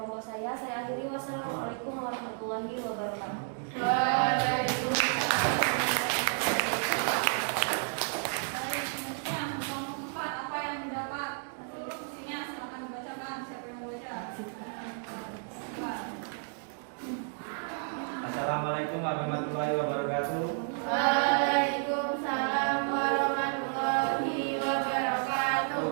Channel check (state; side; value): silent; left; 57 dB below the other